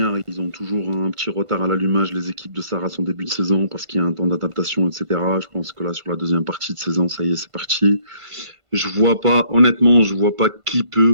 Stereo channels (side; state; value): left; late; 1.5 ms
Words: ils ont toujours un petit retard à l'allumage, les équipes de Sarah, en début de saison, parce qu'il y a un temps d'adaptation, etc. Je pense que là, sur la deuxième partie de saison, ça y est, c'est parti. Je vois pas, honnêtement, je vois pas qui